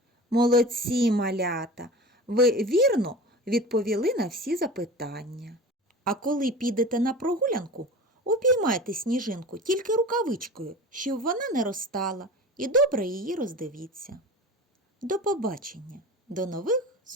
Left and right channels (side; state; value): both; normal; correlation 0.35